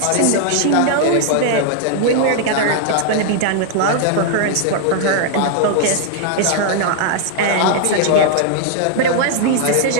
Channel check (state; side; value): different; both; correlation 0.00